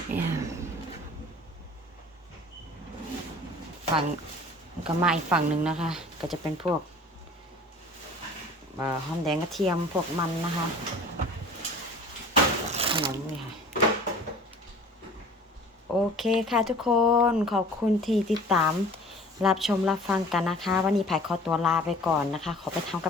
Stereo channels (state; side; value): normal; both; correlation 0.46